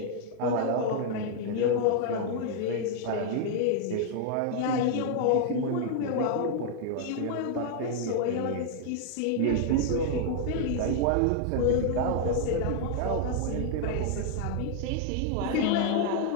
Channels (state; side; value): different; both; correlation 0.00